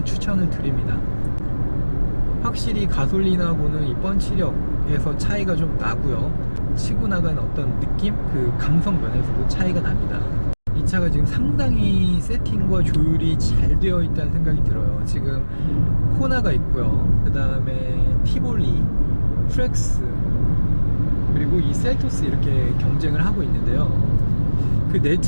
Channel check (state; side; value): inverted; both; correlation -1.00